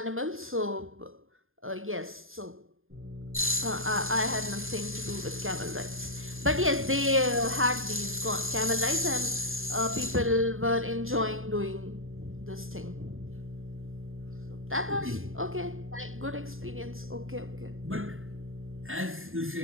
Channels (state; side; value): late; left; 0.60 ms